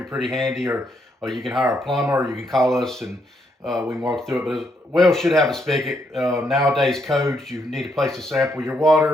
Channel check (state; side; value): normal; both; correlation 0.76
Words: pretty handy, or you can hire a plumber, or you can call us and we can walk through it. But a well should have a spigot. Nowadays codes, you need a place to sample your